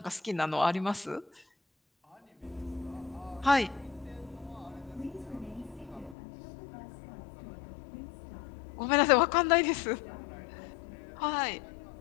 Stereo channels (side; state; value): right; drops out; at 6.2 s